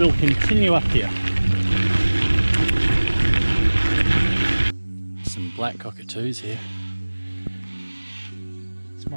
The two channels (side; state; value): both; inverted; correlation -1.00